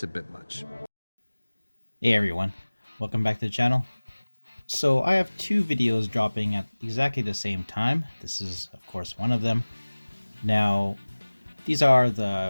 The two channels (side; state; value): both; inverted; correlation -1.00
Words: a bit much. Hey everyone, welcome back to the channel. So I have two videos dropping at exactly the same time. This is of course one of them. Now these are